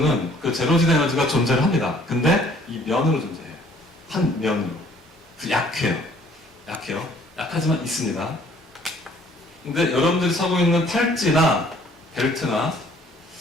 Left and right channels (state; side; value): normal; both; correlation 0.58